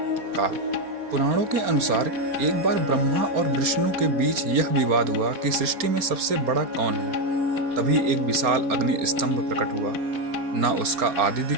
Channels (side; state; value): left; late; 4.3 ms